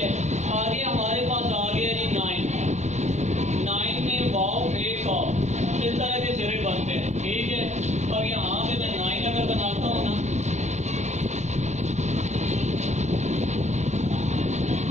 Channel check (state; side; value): late; left; 0.33 ms